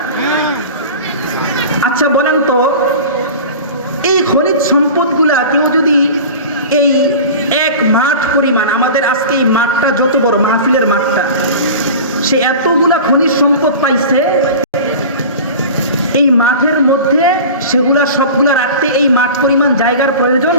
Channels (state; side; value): inverted; both; correlation -0.35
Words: আচ্ছা বলেন তো, এই খনিজ সম্পদগুলা কেউ যদি এই এক মাঠ পরিমাণ, আমাদের আজকে এই মাঠটা যত বড়, মাহফিলের মাঠটা, সে এতগুলা খনিজ সম্পদ পাইছে, এই মাঠের মধ্যে সেগুলা সবগুলা রাখতে এই মাঠ পরিমাণ জায়গার প্রয়োজন